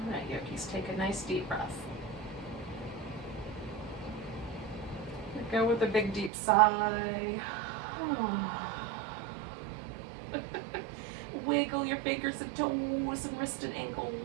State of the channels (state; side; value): drops out; left; at 6.3 s